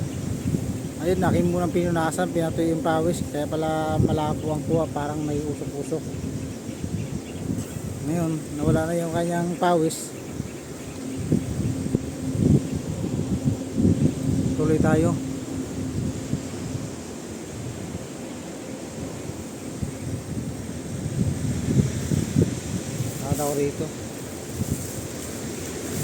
Ayun, akin munang pinunasan, pinatuyo yung pawis, kaya pala malabo ang kuha, parang may usok-usok. Ngayon nawala na yung kanyang pawis. Tuloy tayo. Nakataw rito.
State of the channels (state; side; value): identical; both; correlation 1.00